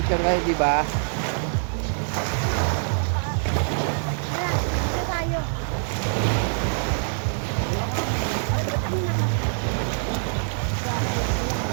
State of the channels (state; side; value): silent; left; 62 dB below the other